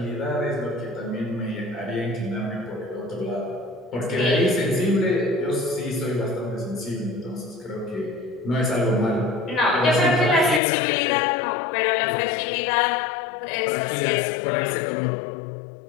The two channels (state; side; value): drops out; right; at 10.6 s